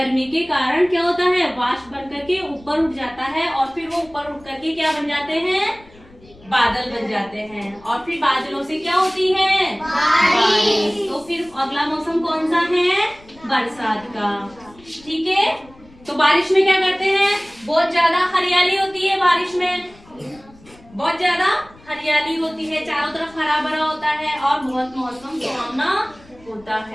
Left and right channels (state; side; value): noise; left; rumble, 25 dB below the sound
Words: के कारण क्या होता है? वाष्प बन करके ऊपर उठ जाता है, और फिर वो ऊपर उठ करके क्या बन जाते हैं? बादल बन जाते हैं। और फिर बादलों से क्या होती है? बारिश। तो फिर अगला मौसम कौन सा है? बरसात का। ठीक है, तो बारिश में क्या करते हैं? बहुत ज्यादा हरियाली होती है बारिश में, बहुत ज्यादा हरियाली होती है, चारों तरफ हरा भरा होता है और बहुत मौसम सुहावना होता